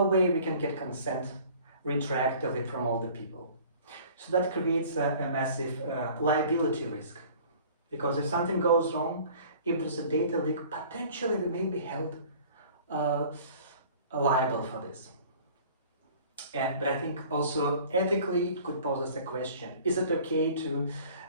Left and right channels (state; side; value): inverted; both; correlation -0.49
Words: way we can get consent retroactively from all the people. So that creates a massive liability risk, because if something goes wrong, if there's a data leak, potentially we may be held liable for this. But I think also ethically it could pose us a question. Is it okay to